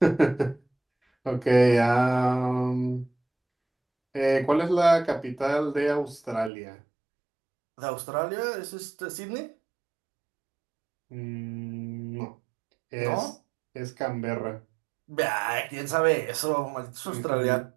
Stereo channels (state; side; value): drops out; left; at 6.5 s